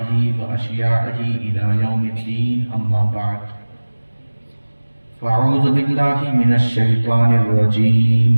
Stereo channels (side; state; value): both; inverted; correlation -1.00